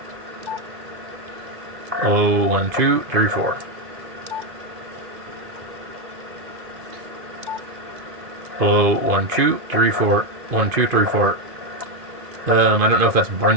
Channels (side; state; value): left; late; 2.5 ms